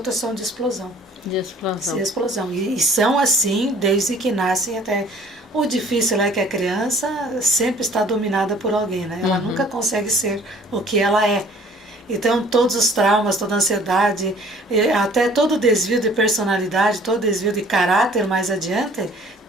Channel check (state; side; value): normal; both; correlation 0.54